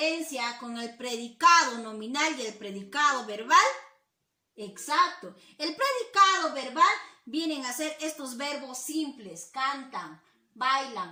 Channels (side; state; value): both; identical; correlation 1.00